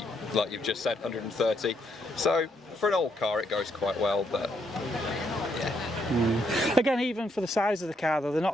you've just said, 130. So for an old car, it goes quite well, but yeah. Again, even for the size of the car, though, they're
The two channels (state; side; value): normal; both; correlation 0.75